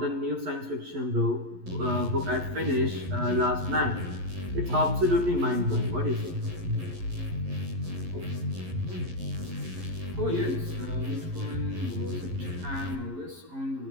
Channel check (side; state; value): left; late; 11 ms